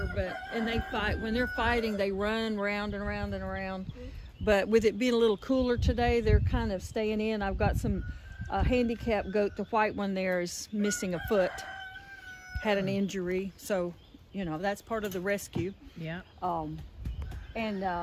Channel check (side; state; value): both; identical; correlation 1.00